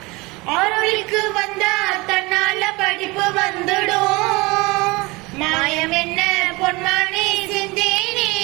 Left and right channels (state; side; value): quieter; left; 23.9 dB